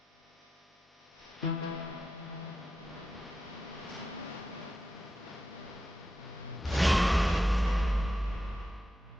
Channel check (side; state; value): both; normal; correlation 0.89